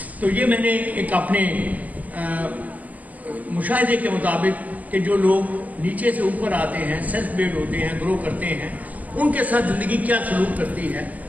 تو یہ میں نے ایک اپنے مشاہدے کے مطابق کہ جو لوگ نیچے سے اوپر آتے ہیں، سیلف میڈ ہوتے ہیں، گرو کرتے ہیں، ان کے ساتھ زندگی کیا سلوک کرتی ہے،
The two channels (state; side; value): late; left; 0.076 ms